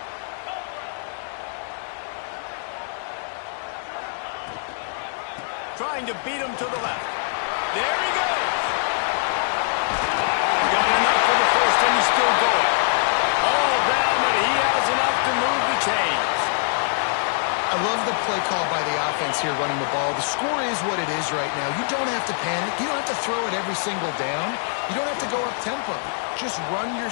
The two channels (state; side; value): silent; right; digital silence